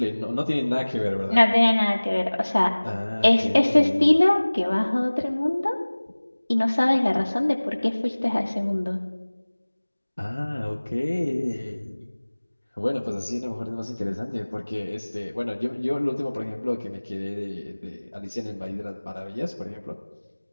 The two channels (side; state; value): both; inverted; correlation -1.00